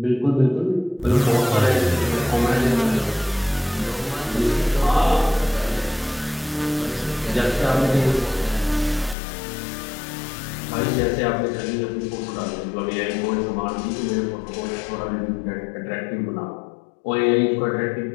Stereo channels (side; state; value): right; drops out; at 9.2 s